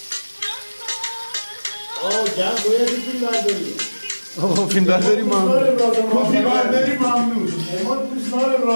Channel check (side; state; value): both; inverted; correlation -1.00